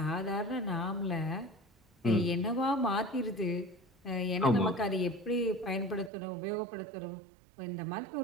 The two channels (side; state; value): left; drops out; at 6.1 s